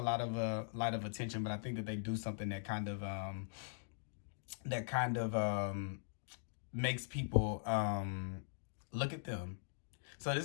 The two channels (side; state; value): right; silent; digital silence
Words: lot of attention, but I think that they do something that kind of makes people look at them. So